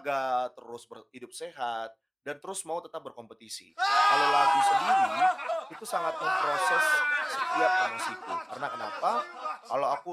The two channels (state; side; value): identical; both; correlation 1.00